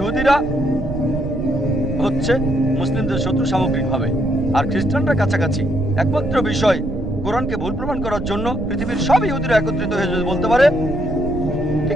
হচ্ছে মুসলিমদের শত্রু সামগ্রিকভাবে, আর খ্রিস্টানরা কাছাকাছি। একমাত্র বিষয় কোরআনকে ভুল প্রমাণ করার জন্য পৃথিবীর সব ইহুদিরা একত্রিত হয়ে যদি বলতে পারে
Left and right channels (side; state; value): right; noise; rumble, 8 dB below the sound